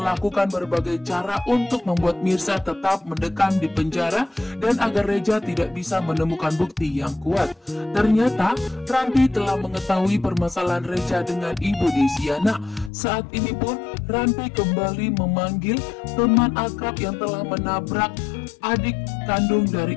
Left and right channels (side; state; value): right; drops out; at 12.9 s